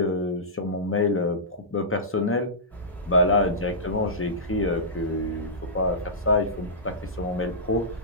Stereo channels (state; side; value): normal; both; correlation -0.17